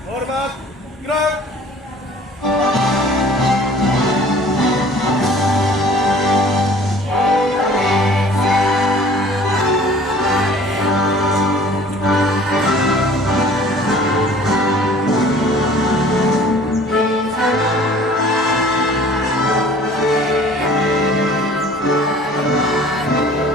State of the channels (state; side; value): normal; both; correlation 0.50